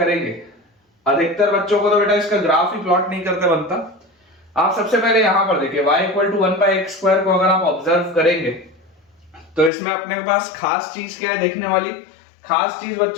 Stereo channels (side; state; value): right; drops out; at 9.7 s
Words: अधिकतर बच्चों को तो बेटा इसका ग्राफ ही प्लॉट नहीं करते बनता, आप सबसे पहले यहां पर देखिए y equal to 1 by x square को अगर आप ऑब्जर्व करेंगे तो इसमें अपने पास खास चीज क्या है देखने वाली, खास चीज